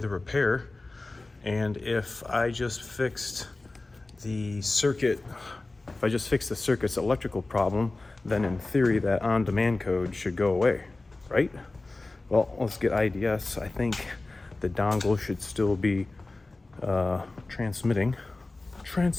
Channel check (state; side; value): quieter; right; 3.2 dB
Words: repair, and if I just fixed the circuit, if I just fixed the circuit's electrical problem, then in theory that on-demand code should go away, right? Well, let's get IDS. I think the dongle should still be transmitting.